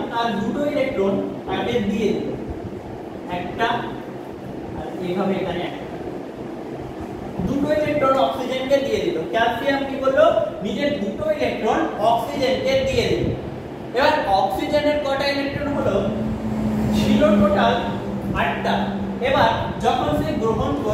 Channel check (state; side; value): identical; both; correlation 1.00